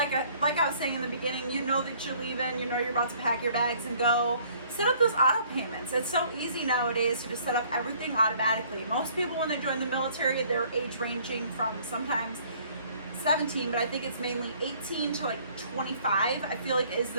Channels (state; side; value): inverted; both; correlation -0.58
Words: I was saying in the beginning, you know that you're leaving, you're about to pack your bags and go. Set up those auto payments. It's so easy nowadays to just set up everything automatically. Most people, when they join the military, they're age ranging from sometimes 17, but I think it's mainly 18 to 25. I feel is